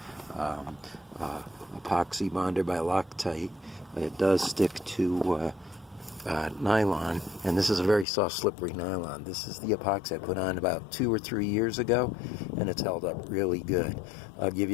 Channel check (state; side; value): drops out; right; at 8.1 s